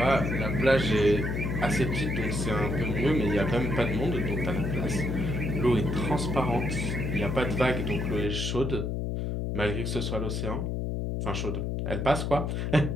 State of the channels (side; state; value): left; noise; hum, 1 dB below the sound